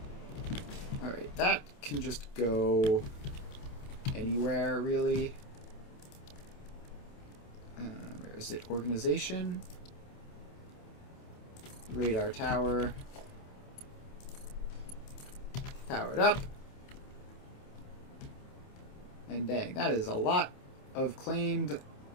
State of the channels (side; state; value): right; late; 28 ms